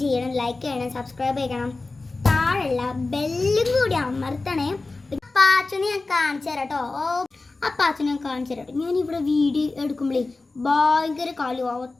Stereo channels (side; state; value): right; quieter; 3.5 dB